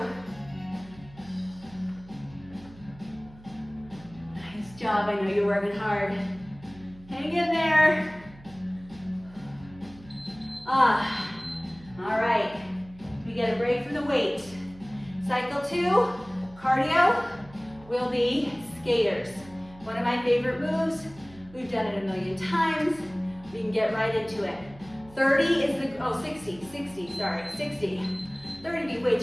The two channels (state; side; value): noise; right; hum, 21 dB below the sound